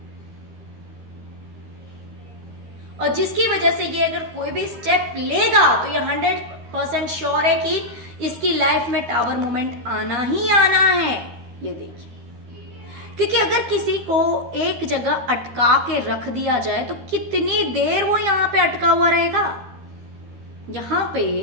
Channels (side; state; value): left; late; 13 ms